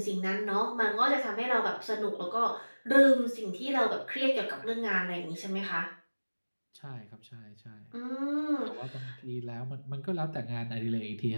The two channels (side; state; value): both; inverted; correlation -1.00